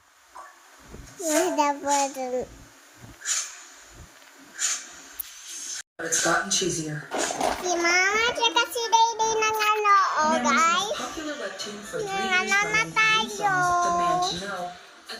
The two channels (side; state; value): both; identical; correlation 1.00